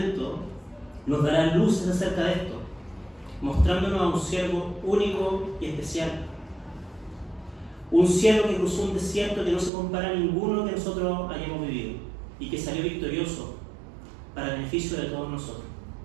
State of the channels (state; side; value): drops out; left; at 9.7 s